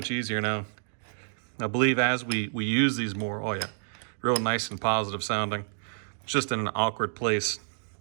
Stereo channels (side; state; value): left; silent; digital silence